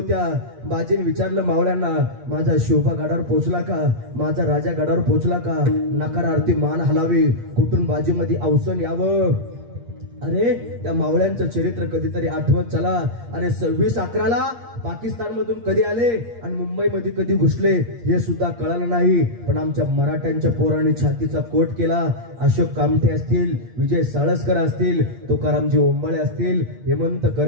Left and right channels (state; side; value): late; left; 8.6 ms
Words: बाजीने विचारलं मावळ्यांना, माझा शिवबा गडावर पोहोचला का? माझा राजा गडावर पोहोचला का? नकारार्थी मान हलावी, कुठून बाजीमध्ये अवसन यावं. अरे त्या मावळ्यांचं चरित्र कधीतरी आठवत चला. अरे 26/11 पाकिस्तान मधून कधी आले आणि मुंबईमध्ये कधी घुसले हे सुद्धा कळालं नाही. पण आमच्या मराठ्यांच्या पोरांनी छातीचा कोट केला. अशोक कामठे असतील, विजय साळसकर असतील, तुकारामजी ओंबाळे असतील, हेमंत